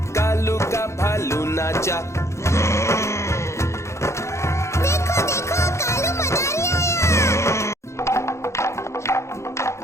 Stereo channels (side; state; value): right; late; 0.14 ms